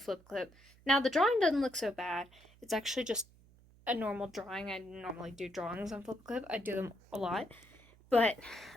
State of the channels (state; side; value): noise; right; hum, 26 dB below the sound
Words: Now, the drawing doesn't look so bad. It's actually just a normal drawing. I normally do drawings on Flipaclip. I do them a lot. But,